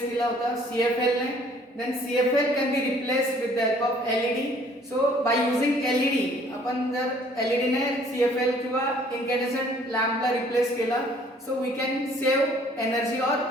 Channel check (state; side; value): normal; both; correlation 0.58